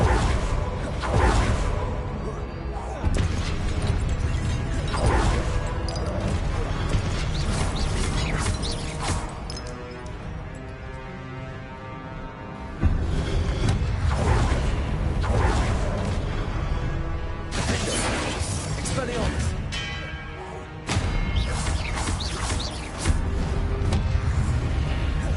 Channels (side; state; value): both; identical; correlation 1.00